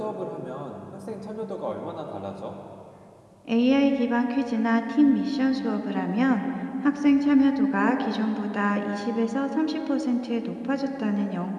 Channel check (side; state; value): both; identical; correlation 1.00